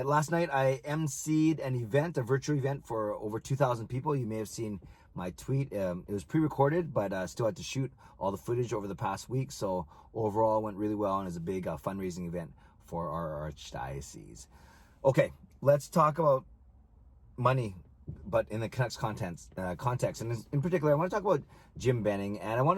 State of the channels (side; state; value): both; identical; correlation 1.00